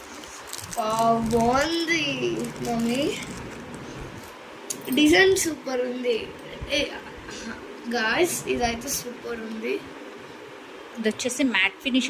బాగుంది మమ్మీ, డిజైన్ సూపర్ ఉంది గాయ్స్. ఇదైతే సూపర్ ఉంది. ఇది వచ్చేసి మ్యాట్ ఫినిష్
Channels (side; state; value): both; identical; correlation 1.00